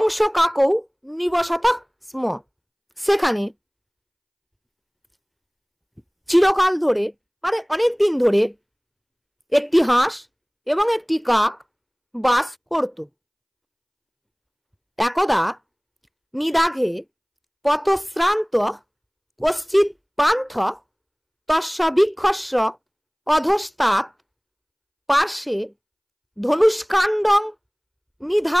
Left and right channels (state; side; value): identical; both; correlation 1.00